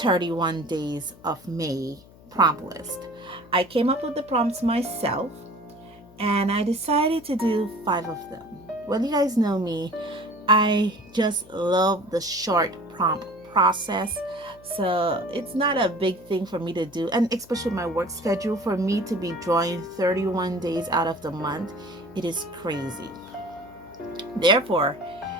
days of May prompt list. I came up with the prompts myself and I decided to do 5 of them. Well, you guys know me, I just love the short prompt process. So it's not a big thing for me to do, and especially my work schedule, for me to be drawing 31 days out of the month, it is crazy. Therefore,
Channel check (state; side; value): noise; left; hum, 23 dB below the sound